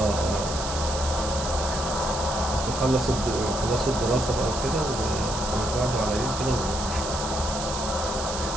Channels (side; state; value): right; noise; hiss, 7 dB below the sound